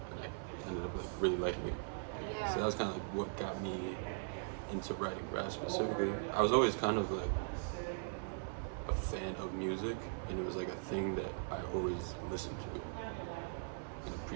and I ended up like really liking it. Yeah. So that was kind of like what got me into writing rap specifically. I was always kind of like a fan of music, and it was like a thing that I always listened to and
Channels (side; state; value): left; silent; digital silence